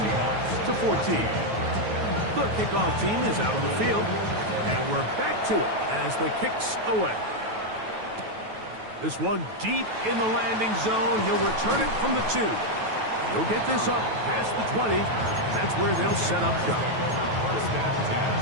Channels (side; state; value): left; late; 9.2 ms